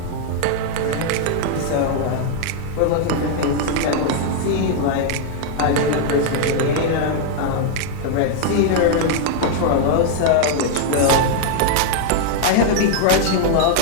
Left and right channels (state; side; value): different; both; correlation 0.00